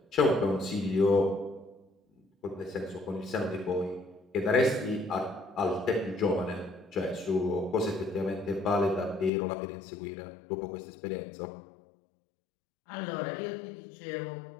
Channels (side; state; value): right; drops out; at 9.3 s